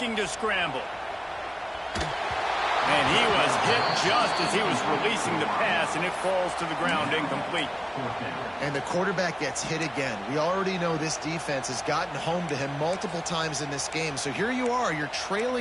to scramble. And he was hit just as he was releasing the pass, and it falls to the ground incomplete. And the quarterback gets hit again. We already know this defense has gotten home to him multiple times in this game. So here you are, you're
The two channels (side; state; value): both; identical; correlation 1.00